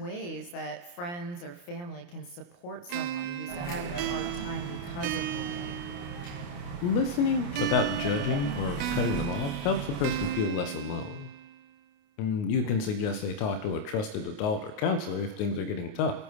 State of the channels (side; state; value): right; late; 29 ms